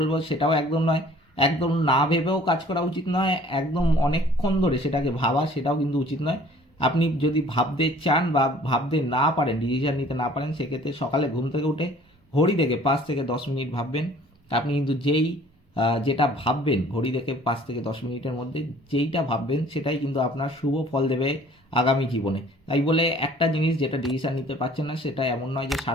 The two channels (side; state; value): both; normal; correlation 0.53